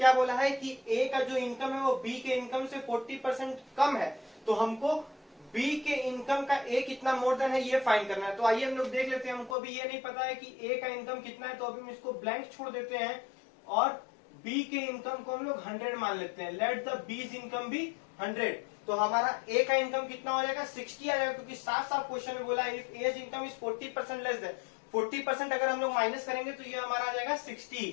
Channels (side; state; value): right; drops out; at 9.6 s